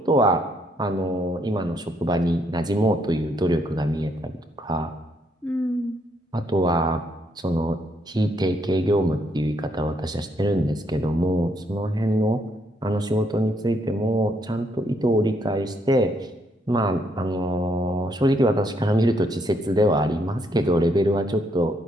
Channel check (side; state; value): both; normal; correlation 0.73